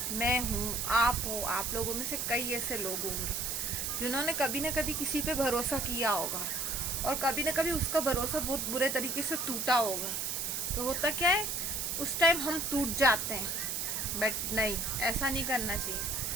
मैं हूँ, आप हो, आप लोगों में से कई ऐसे लोग होंगे जिन्होंने कभी ना कभी किसी पे भरोसा किया होगा और कभी ना कभी उसका भरोसा बहुत बुरे तरीके से टूटा होगा। तो होता क्या है, उस टाइम हम टूट जाते हैं, बट नहीं, ऐसा नहीं करना चाहिए।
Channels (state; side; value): noise; right; hiss, 1 dB below the sound